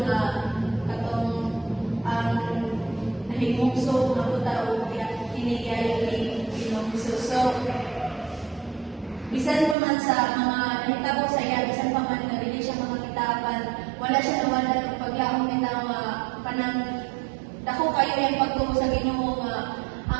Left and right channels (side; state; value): left; drops out; at 9.8 s